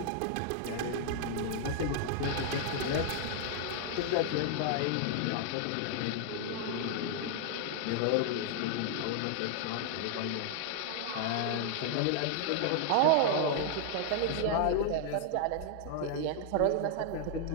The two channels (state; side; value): different; both; correlation 0.00